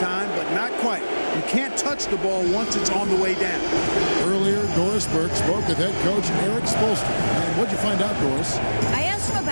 but not quite. You can't touch the ball once it's on the way down. Earlier, Doris Burke spoke with head coach Eric Spoelstra. And what'd you find out, Doris? I asked him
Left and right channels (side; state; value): both; inverted; correlation -1.00